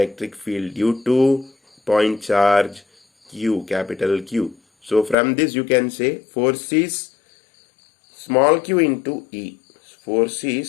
field due to point charge Q, capital Q. So from this you can say force is small q into E. Force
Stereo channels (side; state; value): right; drops out; at 5.2 s